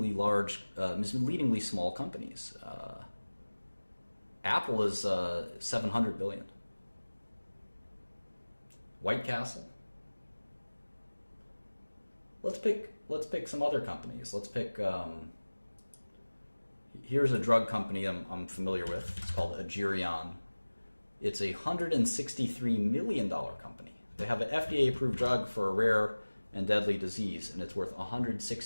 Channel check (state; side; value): inverted; both; correlation -1.00